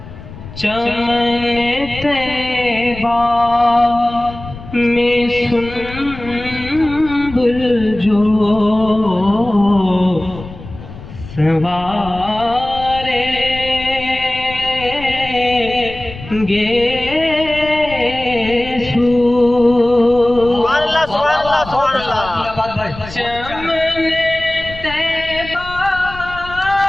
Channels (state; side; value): noise; left; rumble, 14 dB below the sound